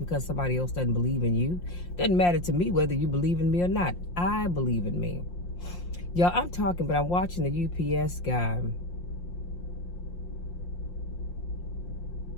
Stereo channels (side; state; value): right; late; 5.7 ms